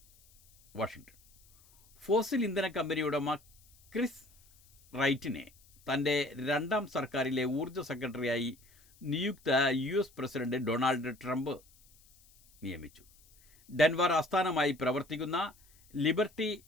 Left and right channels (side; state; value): left; noise; hiss, 29 dB below the sound